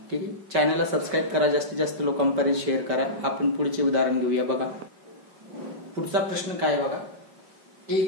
ठीक आहे, चॅनलला सबस्क्राईब करा, जास्तीत जास्त लोकांपर्यंत शेअर करा. आपण पुढचे उदाहरण घेऊया बघा. पुढचा प्रश्न काय बघा.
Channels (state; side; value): late; left; 5.2 ms